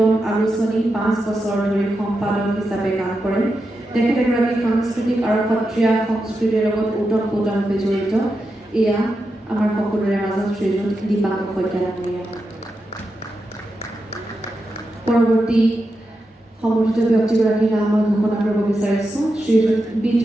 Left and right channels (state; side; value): normal; both; correlation 0.88